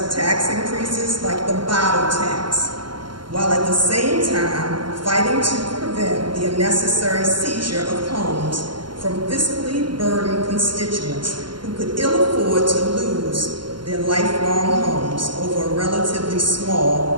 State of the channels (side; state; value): left; late; 0.72 ms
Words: tax increases like the bottle tax, while at the same time fighting to prevent the unnecessary seizure of homes from fiscally burdened constituents who could ill afford to lose their lifelong homes over a relatively